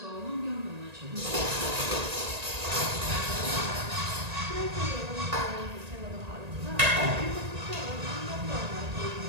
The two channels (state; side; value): late; left; 1.8 ms